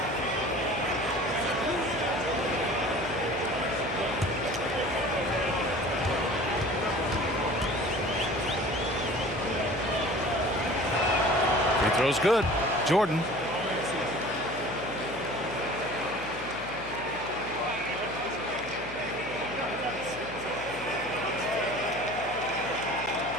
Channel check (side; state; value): left; noise; hum, 15 dB below the sound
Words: Throw's good. Jordan.